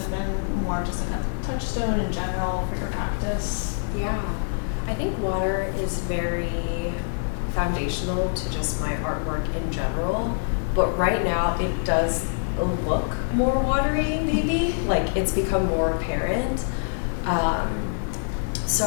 been more just like a touchstone in general for your practice? Yeah, I think water is very foundational to just my artwork in general, but right now it does look more watery, maybe, like it's become more apparent.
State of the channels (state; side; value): silent; right; 56 dB below the other